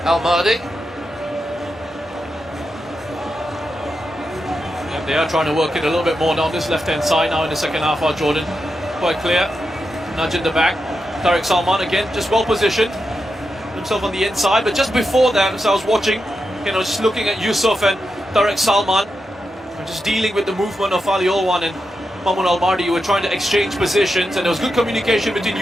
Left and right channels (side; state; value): both; normal; correlation 0.87